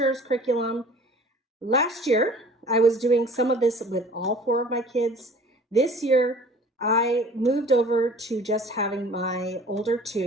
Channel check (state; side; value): normal; both; correlation 0.48